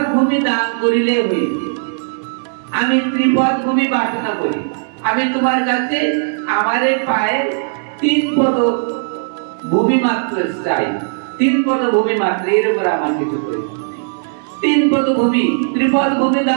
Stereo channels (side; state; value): left; silent; digital silence